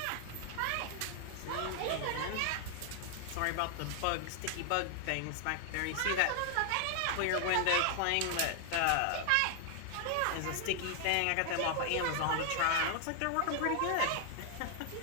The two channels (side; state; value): both; different; correlation 0.00